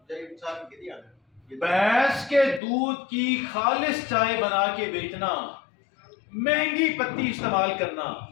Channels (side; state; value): right; drops out; at 2.6 s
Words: تقریباً سال میں کتنی آتا ہے؟ بھینس کے دودھ کی خالص چائے بنا کے بیچنا، مہنگی پتی استعمال کرنا